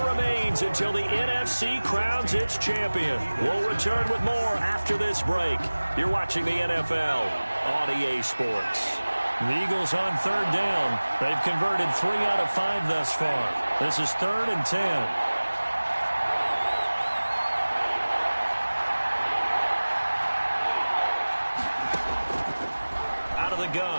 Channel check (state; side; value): inverted; both; correlation -1.00